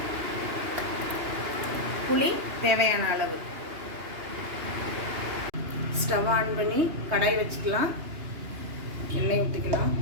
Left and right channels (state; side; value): late; left; 2.9 ms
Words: புளி தேவையான அளவு. ஸ்டவ் ஆன் பண்ணி கடாய் வச்சுக்கலாம். எண்ணெய் ஊற்றிக்கலாம்.